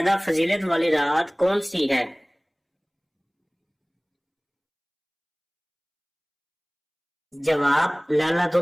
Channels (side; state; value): both; identical; correlation 1.00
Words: فضیلت والی رات کون سی ہے؟ جواب لیلۃ